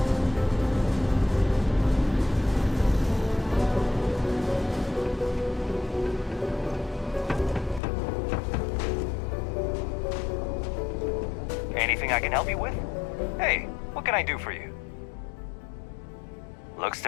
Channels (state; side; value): drops out; right; at 7.8 s